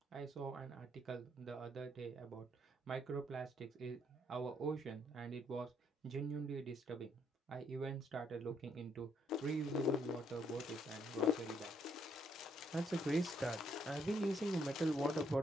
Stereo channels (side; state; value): both; normal; correlation 0.72